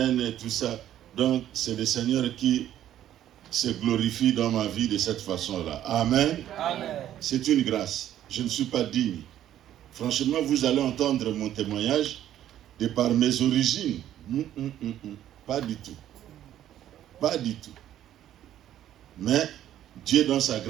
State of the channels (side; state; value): left; quieter; 11.8 dB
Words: et tout ça. Donc, c'est le Seigneur qui se glorifie dans ma vie de cette façon-là. Amen. Amen. C'est une grâce. Je ne suis pas digne. Franchement, vous allez entendre mon témoignage de par mes origines. Pas du tout. Pas du tout. Mais Dieu, dans sa